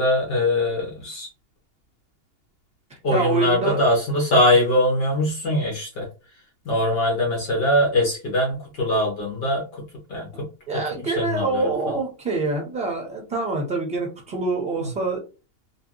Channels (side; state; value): right; late; 2.8 ms